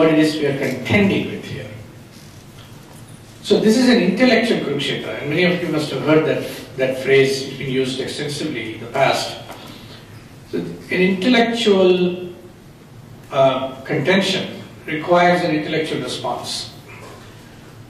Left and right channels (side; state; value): both; identical; correlation 1.00